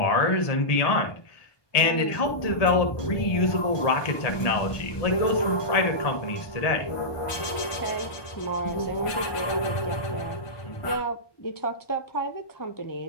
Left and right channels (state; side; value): late; right; 1.2 ms